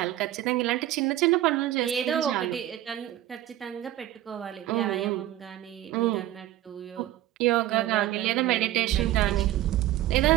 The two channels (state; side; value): quieter; left; 13.9 dB